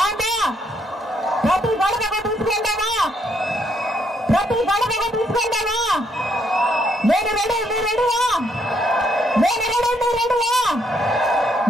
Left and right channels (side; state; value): both; normal; correlation 0.72